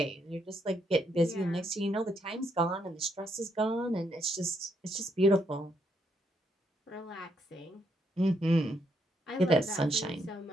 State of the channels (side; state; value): both; normal; correlation 0.75